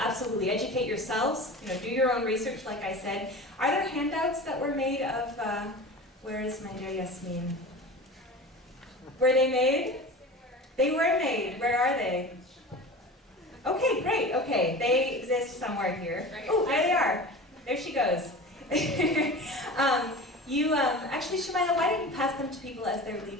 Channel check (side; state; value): both; normal; correlation 0.34